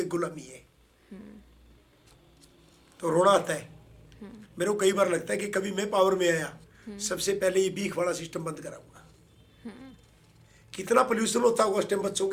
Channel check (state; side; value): identical; both; correlation 1.00